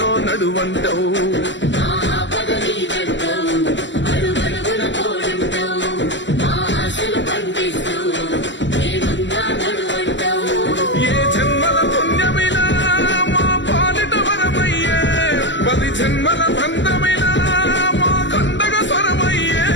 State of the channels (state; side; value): late; right; 0.54 ms